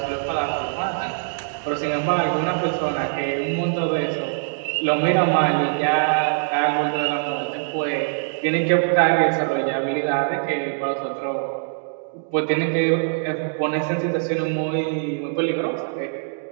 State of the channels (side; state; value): left; silent; digital silence